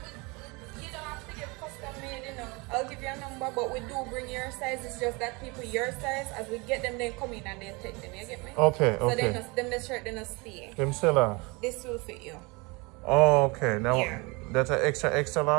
You don't have to get custom made, you know. I'll give you a number, but we do bring your size. It's just that people your size, as we get them, they come in and they take them. You get me? Okay. So then the shirt, they not stay. Them still are. This will fit you. Oh, okay. Now Yeah. that's an extra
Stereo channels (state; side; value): quieter; left; 27.0 dB